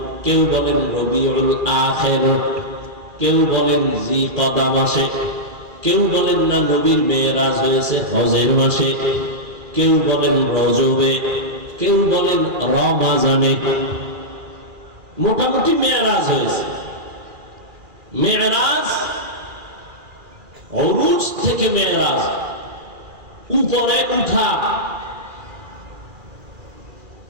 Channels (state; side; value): late; left; 2.4 ms